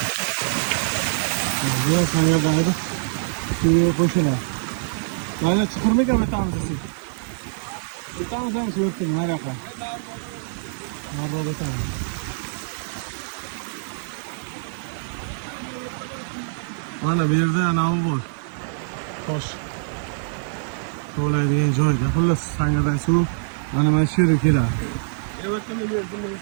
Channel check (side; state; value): left; silent; digital silence